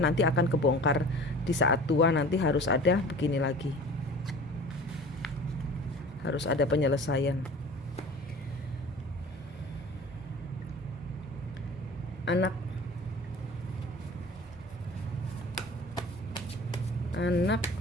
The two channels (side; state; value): both; normal; correlation 0.42